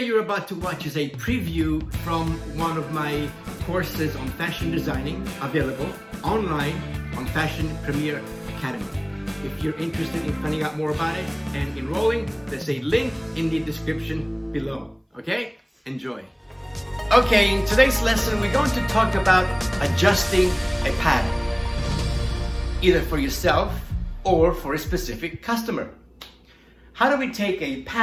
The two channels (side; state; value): both; identical; correlation 1.00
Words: about to watch is a preview from one of my courses on fashion designing, available online on Fashion Premier Academy. If you're interested in finding out more about it and enrolling, there's a link in the description below. Okay? Enjoy. Okay, in today's lesson, we're going to talk about adjusting a pattern, either for yourself or for a specific customer. How do we take a